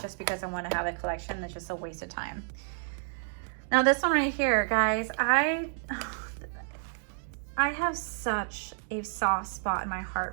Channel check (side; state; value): left; silent; digital silence